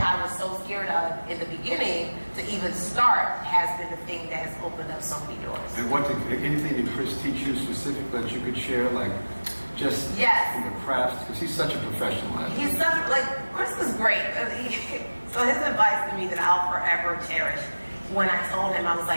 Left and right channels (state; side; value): inverted; both; correlation -1.00